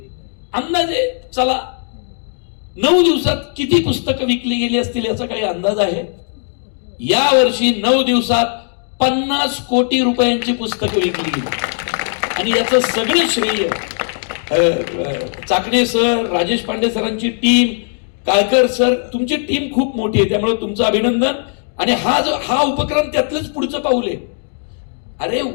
अंदाजे चला 9 दिवसात किती पुस्तकं विकली गेली असतील याचा काही अंदाज आहे? या वर्षी 9 दिवसात 50 कोटी रुपयांची पुस्तकं विकली गेली. आणि याचं सगळं श्रेय चाकणे सर, राजेश पांडे सरांची टीम, काळकर सर, तुमची टीम खूप मोठी आहे, त्यामुळे तुमचं अभिनंदन. आणि हा उपक्रम त्यातलंच पुढचं पाऊल आहे. अरे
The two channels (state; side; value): silent; right; 59 dB below the other